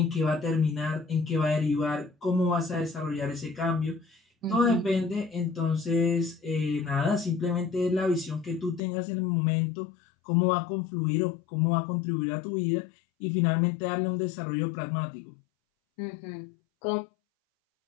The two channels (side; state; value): right; drops out; at 8.8 s